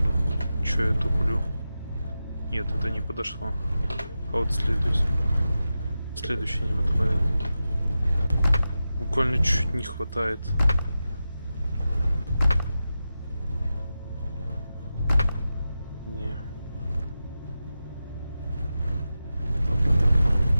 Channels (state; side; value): inverted; both; correlation -0.92